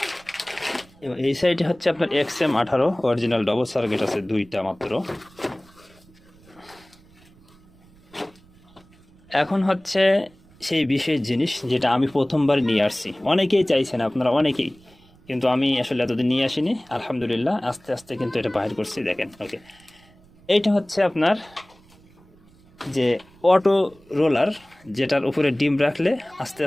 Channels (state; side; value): noise; right; rumble, 28 dB below the sound